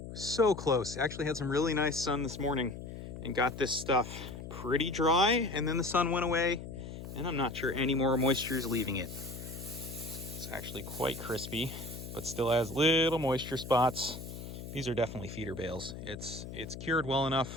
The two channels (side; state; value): left; noise; hum, 10 dB below the sound